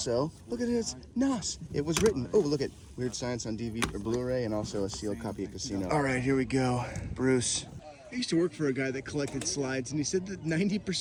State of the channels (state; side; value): identical; both; correlation 1.00